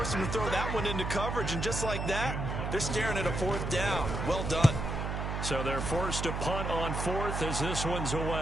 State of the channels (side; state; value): right; noise; hum, 3 dB below the sound